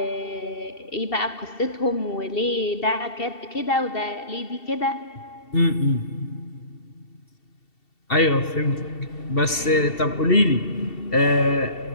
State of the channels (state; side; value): late; right; 2.7 ms